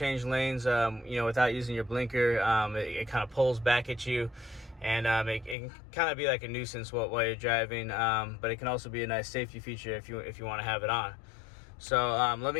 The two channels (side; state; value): right; drops out; at 5.6 s